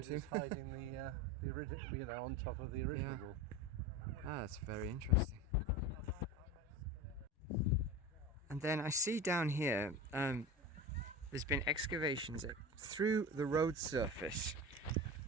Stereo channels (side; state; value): both; normal; correlation 0.29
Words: to? that's hiding the original, you know, on top of the original Yeah. wall. Ah, that's very interesting. And then I see down here, there's been excavations through the road surface